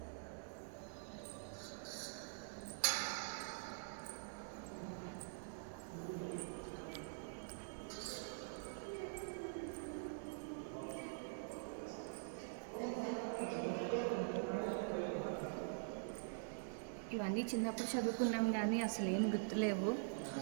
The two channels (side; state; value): left; silent; digital silence